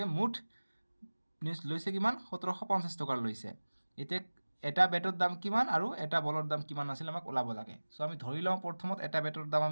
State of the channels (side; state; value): both; inverted; correlation -1.00